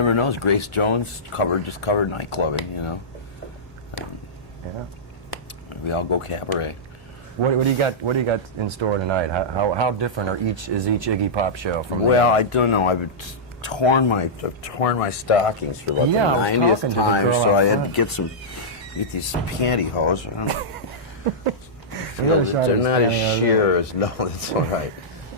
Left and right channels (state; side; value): normal; both; correlation -0.12